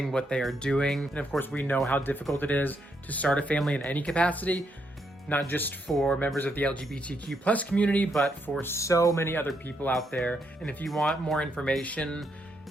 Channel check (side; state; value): both; normal; correlation 0.77